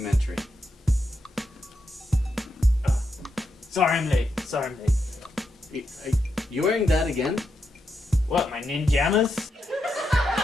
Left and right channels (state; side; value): normal; both; correlation 0.84